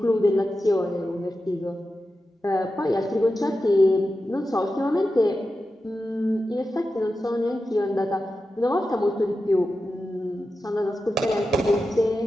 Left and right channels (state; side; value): normal; both; correlation 0.91